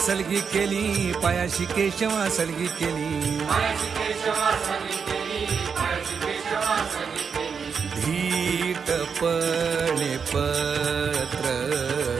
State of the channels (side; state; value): left; quieter; 6.2 dB